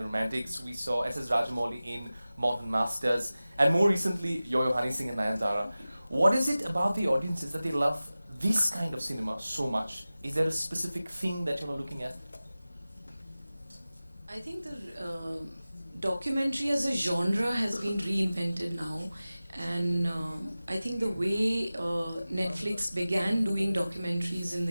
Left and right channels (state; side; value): inverted; both; correlation -0.97